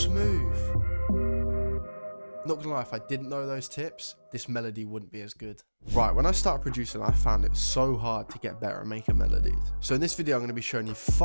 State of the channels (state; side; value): inverted; both; correlation -1.00